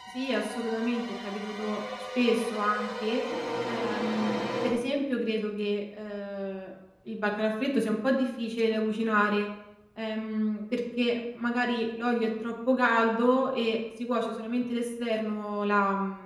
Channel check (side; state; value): both; identical; correlation 1.00